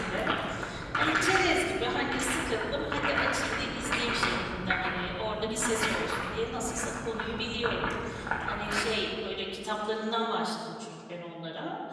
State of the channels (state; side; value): identical; both; correlation 1.00